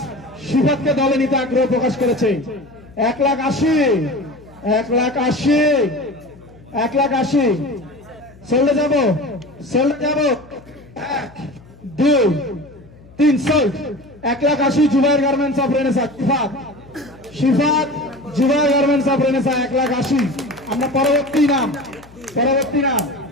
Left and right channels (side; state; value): left; noise; hum, 24 dB below the sound